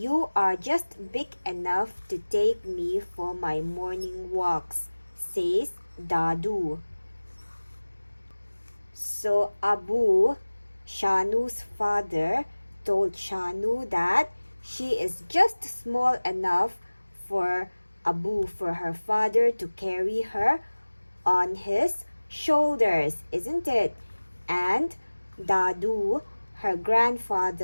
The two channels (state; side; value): inverted; both; correlation -1.00